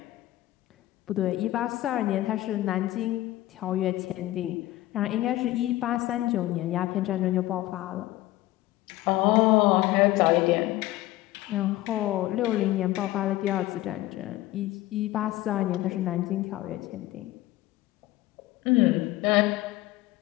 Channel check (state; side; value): quieter; right; 16.4 dB